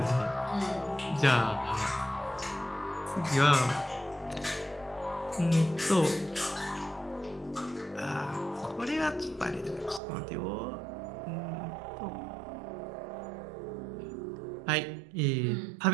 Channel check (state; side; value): drops out; left; at 10.0 s